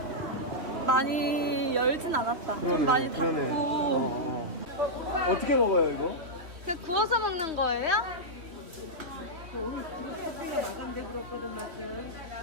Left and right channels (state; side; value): late; left; 3.0 ms